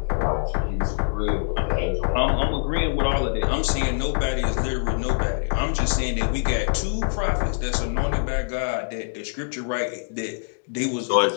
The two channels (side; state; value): right; silent; digital silence